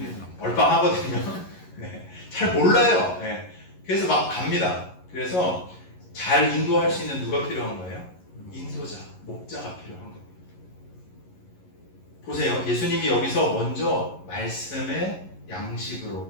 얼빵하거든요. 네. 잘 몰라요. 네. 그래서 막 갑니다. 그래서 잘 인도할 수 있는 누가 필요한 거예요? 인도자, 목자가 필요한 겁니다. 보세요. 예수님이 여기서 먼저 말씀의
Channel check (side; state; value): right; late; 11 ms